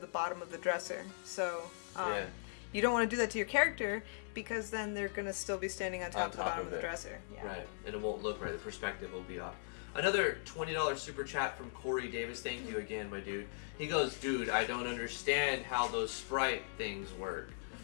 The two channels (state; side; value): silent; right; digital silence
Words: the bottom of the dresser. So you don't want to do that to your character, because then they're going to still be standing on top of the bottom of the dresser. Yeah. Right, and it won't look right. The perspective will be off. Another $20 super chat from Corey Davis. Thank you again, my dude. He goes, dude, I don't understand how those sprite things work.